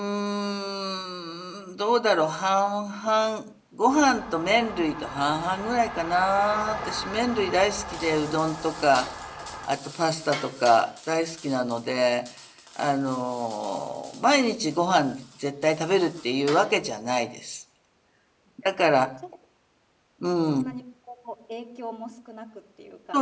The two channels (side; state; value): both; identical; correlation 1.00